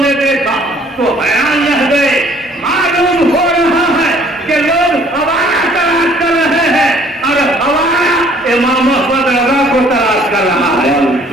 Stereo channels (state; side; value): normal; both; correlation 0.58